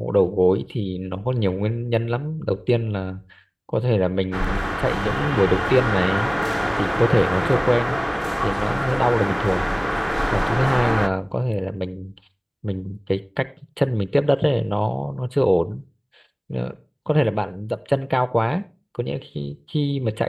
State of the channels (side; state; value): both; identical; correlation 1.00